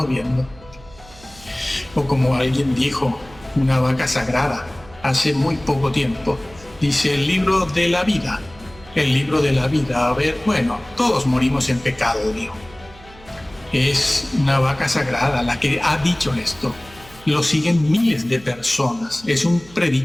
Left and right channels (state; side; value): noise; right; hum, 22 dB below the sound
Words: viendo. O como alguien dijo, una vaca sagrada, hace muy poco tiempo, dice el libro de la vida. El libro de la vida, a ver, bueno, todos morimos en pecado, dijo. Es una vaca sagrada la que ha dicho esto. Lo siguen miles de personas. Es un